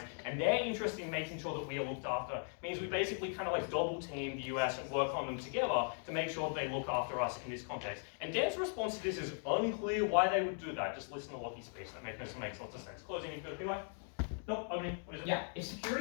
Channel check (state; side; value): silent; right; 52 dB below the other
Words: and their interest in making sure that we are looked after means we basically kind of like double team the US and work on them together to make sure they look after us in this context. And Dan's response to this is unclear why they would do that. Just listen to Lockie's speech. That makes lots of sense. Closing, you've got a PY? No, opening. What is it? Yeah, if